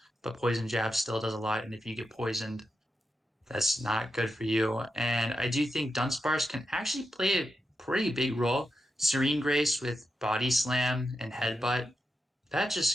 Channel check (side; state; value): both; normal; correlation 0.88